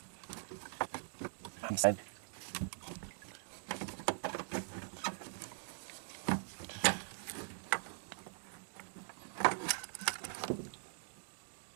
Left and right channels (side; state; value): left; silent; digital silence